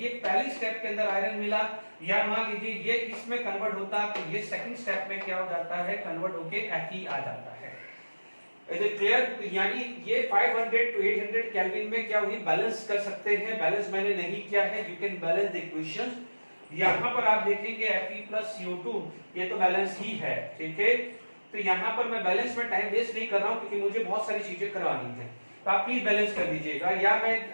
पहली स्टेप के अंदर आयरन मिला, या मान लीजिए ये इसमें कन्वर्ट होता तो ये सेकंड स्टेप में क्या हो जाता है, कन्वर्ट होके Fe आ जाता है। Is it clear? यानी ये 500 to 800 केल्विन में क्या हुई, बैलेंस कर सकते हैं। बैलेंस मैंने नहीं किया है, you can balance the equations. यहाँ पर आप देखेंगे Fe प्लस CO2 ये तो बैलेंस ही है, ठीक है। तो यहाँ पर मैं बैलेंस में टाइम वेस्ट नहीं कर रहा हूँ, क्योंकि मुझे बहुत सारी चीजें करवानी है, तो आप प्लीज बैलेंस कर दीजिएगा, या मैं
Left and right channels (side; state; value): both; inverted; correlation -1.00